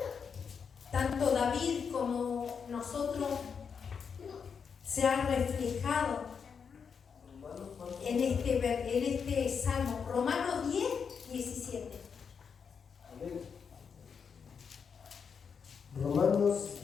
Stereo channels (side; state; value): right; quieter; 6.3 dB